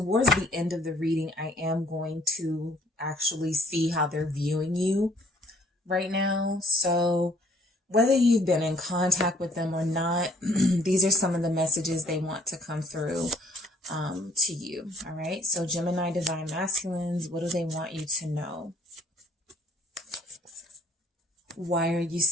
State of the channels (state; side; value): normal; both; correlation 0.60